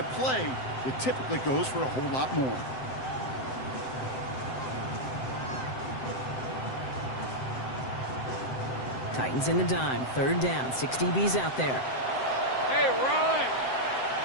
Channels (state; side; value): late; right; 7.7 ms